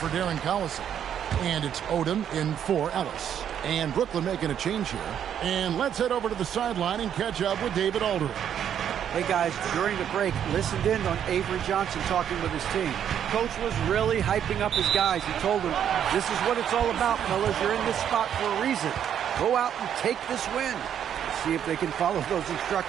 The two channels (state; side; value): quieter; left; 9.3 dB